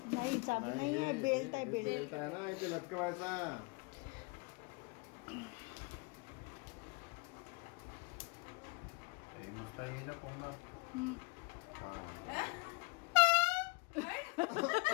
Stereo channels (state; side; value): quieter; right; 27.7 dB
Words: नाही, चाबी नाही आहे, बेल्ट आहे, बेल्ट. बेल्ट आहे ना, इथे लटकवायचा. हे मस्त आहे याच्या कोंबडा. हम्म. हा.